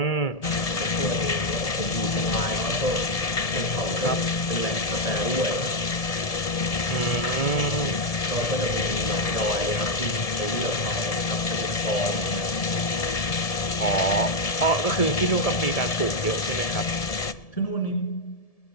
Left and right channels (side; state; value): right; late; 1.7 ms